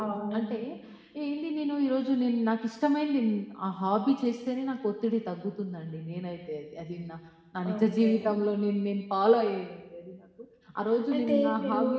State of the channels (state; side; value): identical; both; correlation 1.00